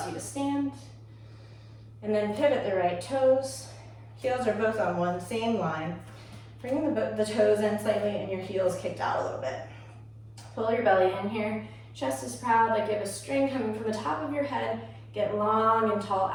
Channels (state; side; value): identical; both; correlation 1.00